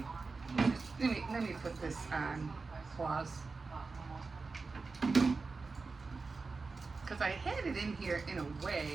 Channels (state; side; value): quieter; left; 4.2 dB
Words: Let me put this on pause, because I had it in here in a